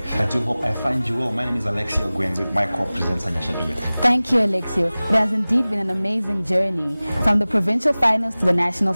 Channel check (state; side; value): inverted; both; correlation -0.98